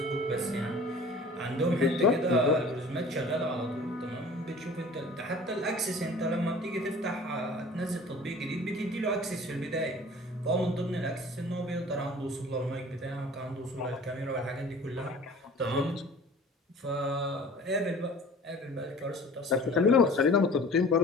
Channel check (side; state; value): both; normal; correlation 0.45